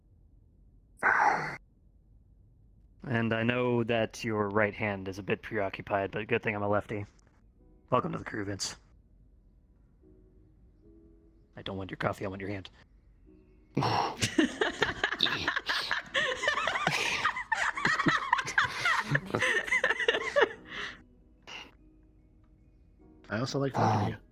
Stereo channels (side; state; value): both; identical; correlation 1.00